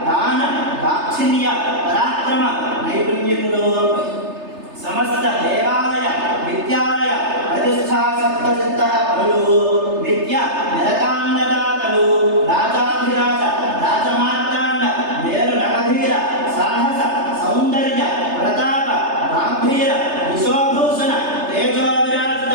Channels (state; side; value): late; left; 3.3 ms